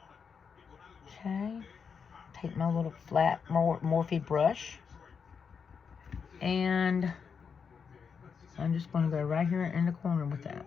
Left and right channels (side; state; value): right; quieter; 6.2 dB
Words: Okay. Take my little flat Morphe brush, and I'm just going to go right here in the corner with that.